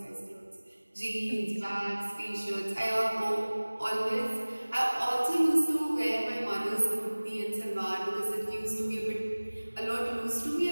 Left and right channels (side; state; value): both; inverted; correlation -1.00